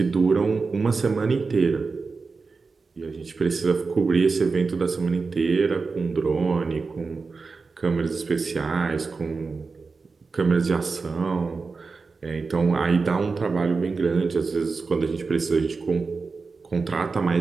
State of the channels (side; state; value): left; quieter; 4.4 dB